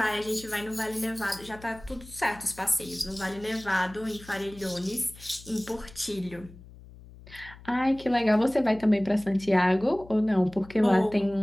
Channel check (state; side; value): noise; left; hum, 19 dB below the sound